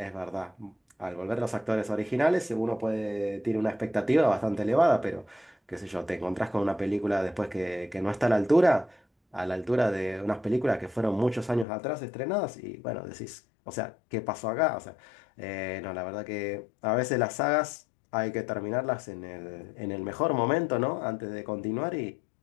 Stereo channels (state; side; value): drops out; right; at 11.7 s